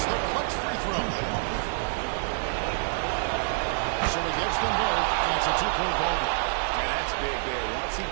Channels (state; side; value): silent; left; digital silence